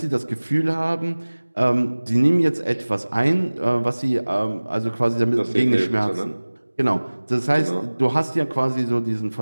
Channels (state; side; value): inverted; both; correlation -1.00